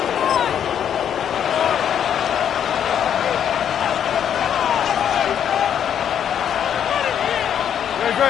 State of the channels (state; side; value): quieter; right; 9.0 dB